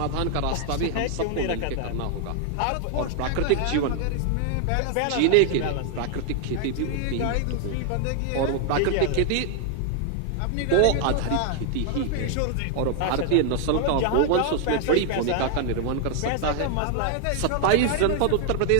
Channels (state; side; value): different; both; correlation 0.00